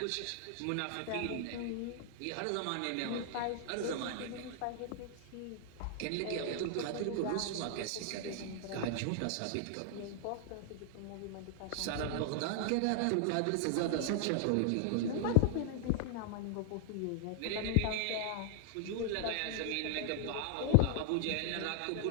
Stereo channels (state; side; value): different; both; correlation 0.00